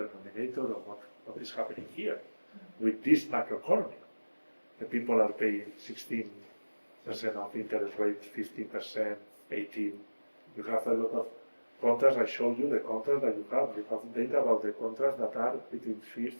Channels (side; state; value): both; inverted; correlation -1.00